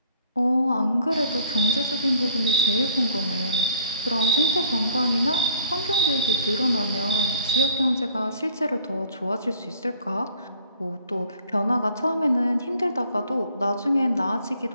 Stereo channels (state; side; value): inverted; both; correlation -0.55